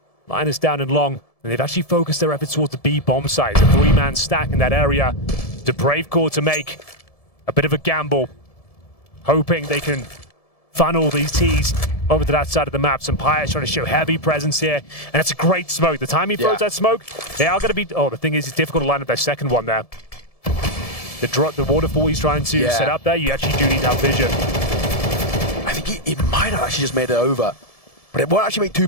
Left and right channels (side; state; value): right; late; 1.7 ms